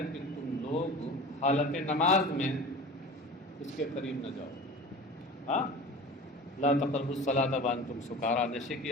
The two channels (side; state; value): both; normal; correlation 0.36